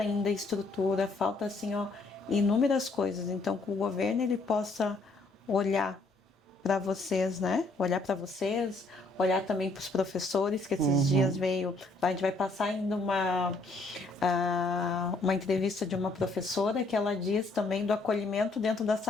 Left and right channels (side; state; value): right; quieter; 3.3 dB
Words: ainda estrutura, falta assim, ó, inúmeras coisas. Então, que o governo ele possa olhar para vocês, né? Olhar para vocês, olhar também para os professores, que esses dias veio. A gente vai passar ainda uma entrevista de uma professora que ela diz também do acolhimento dentro da